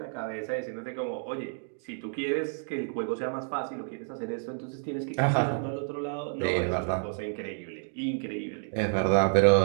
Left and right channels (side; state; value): left; silent; digital silence